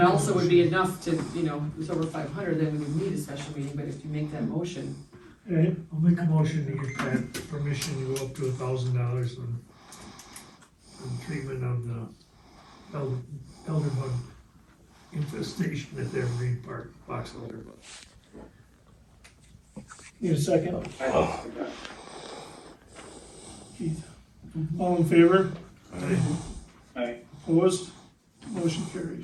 also would be enough to, you know, if it's over 500, then we would need a special meeting, but if you make that motion, okay, I'll make a motion to get that permission to go up to $1,000 on treatment of the elder bug infestation at the Evergreen Park, box elder bug. need a second? Keith. All in favor? Aye. Opposed? Motion carried.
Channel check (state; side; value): identical; both; correlation 1.00